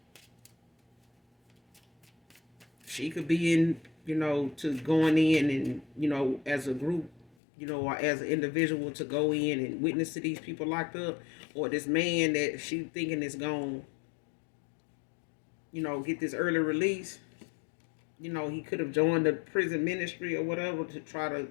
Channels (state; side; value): drops out; right; at 7.4 s